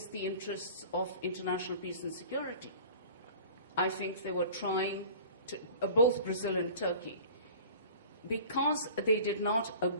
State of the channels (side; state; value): both; inverted; correlation -0.43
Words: the interests of international peace and security. I think they were trying to, both Brazil and Turkey, because they did not